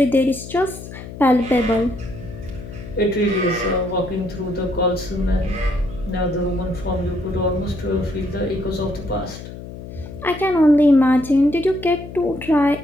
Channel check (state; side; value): noise; left; hum, 12 dB below the sound